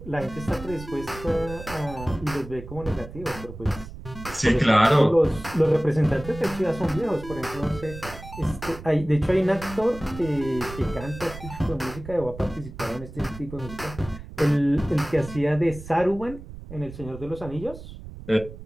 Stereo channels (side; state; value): right; noise; rumble, 13 dB below the sound